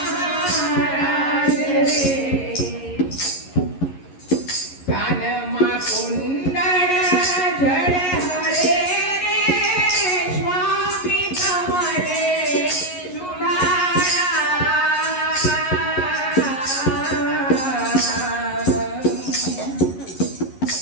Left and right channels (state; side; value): late; right; 11 ms